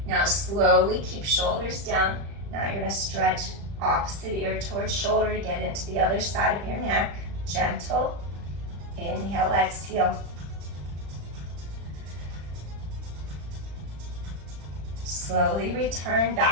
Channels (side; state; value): left; late; 35 ms